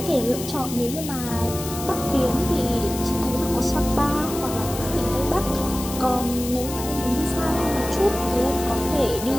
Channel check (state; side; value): noise; left; hiss, 10 dB below the sound